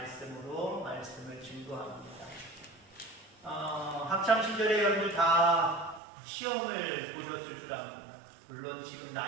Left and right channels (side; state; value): left; drops out; at 6.0 s